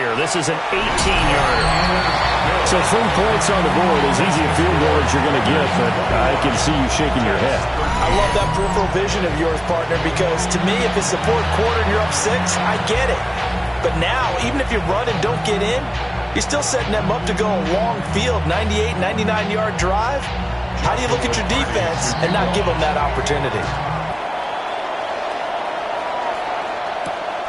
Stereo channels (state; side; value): identical; both; correlation 1.00